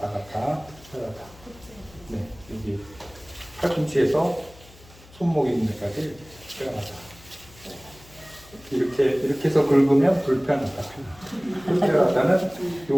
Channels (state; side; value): noise; left; hum, 23 dB below the sound